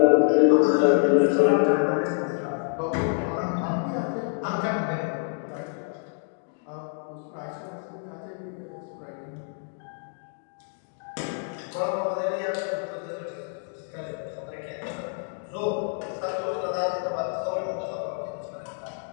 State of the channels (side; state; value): right; silent; 57 dB below the other